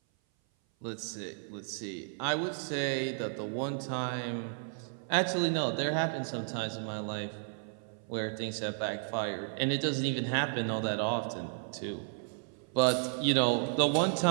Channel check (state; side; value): silent; left; 56 dB below the other